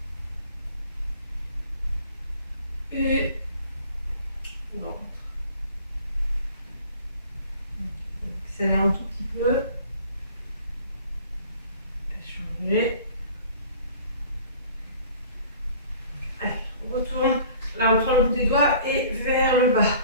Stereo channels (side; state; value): both; inverted; correlation -0.49